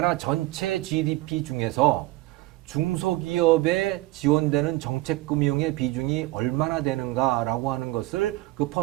전체 GDP 중에서 중소기업에 지원되는 정책금융의 비중이 얼마나 되는가라고 하는 것을 그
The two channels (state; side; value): quieter; left; 18.7 dB